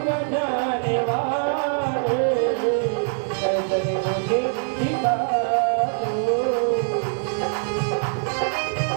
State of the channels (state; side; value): silent; left; digital silence